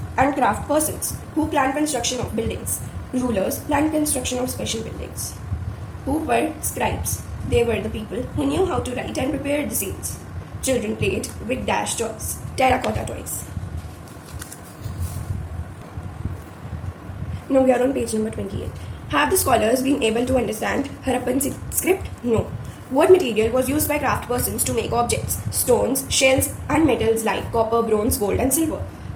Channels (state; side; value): identical; both; correlation 1.00